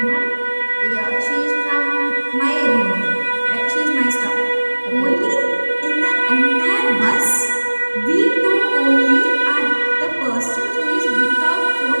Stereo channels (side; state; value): both; inverted; correlation -1.00